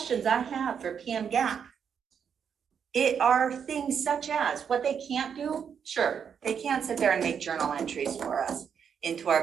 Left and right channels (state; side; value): quieter; left; 7.4 dB